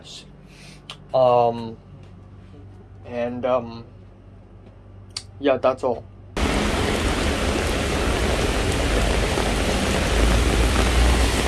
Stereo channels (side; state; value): both; identical; correlation 1.00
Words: Yeah, that's all.